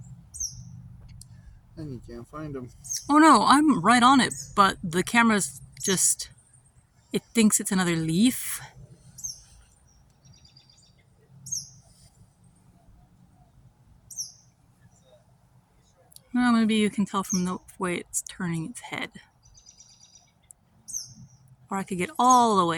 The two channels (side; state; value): both; identical; correlation 1.00